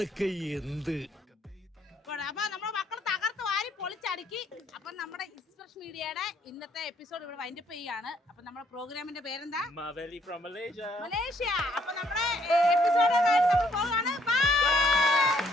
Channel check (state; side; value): normal; both; correlation 0.68